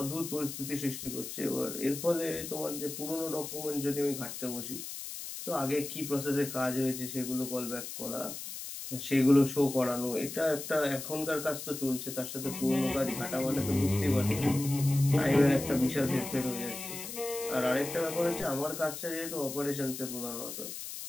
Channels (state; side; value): noise; left; hiss, 8 dB below the sound